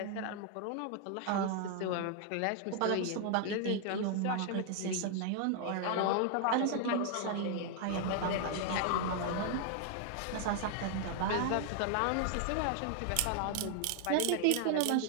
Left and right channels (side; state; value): both; different; correlation 0.00